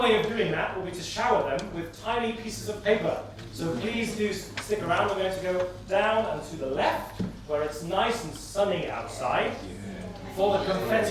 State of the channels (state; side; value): identical; both; correlation 1.00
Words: way of doing that will be to shower them with tiny pieces of paper. So please do stick around. We're going to go down and to the left, where it's nice and sunny outside, for the